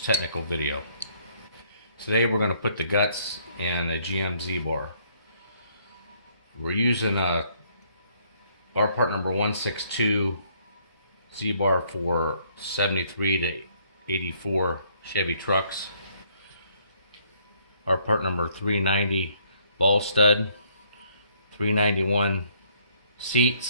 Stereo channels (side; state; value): both; inverted; correlation -0.66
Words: technical video. Today we're going to put the guts in a GM Z-bar. We're using our part number 162 Z-bar for 73 to 84 Chevy trucks. Our part number 390 ball stud, 391